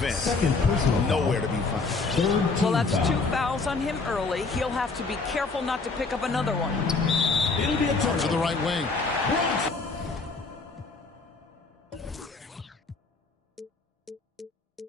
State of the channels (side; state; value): right; quieter; 4.0 dB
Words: nowhere to be found. Well, that's 2 fouls on him early. He'll have to be careful not to pick up another one. It'll be a turn To the right wing.